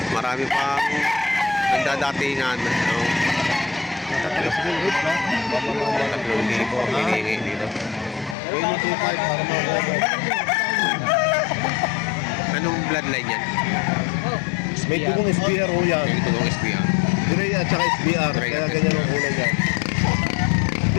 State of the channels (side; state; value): right; drops out; at 8.3 s